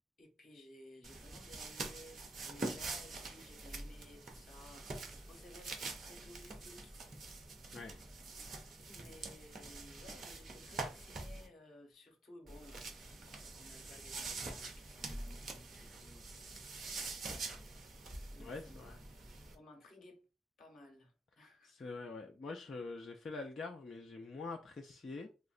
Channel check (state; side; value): normal; both; correlation 0.73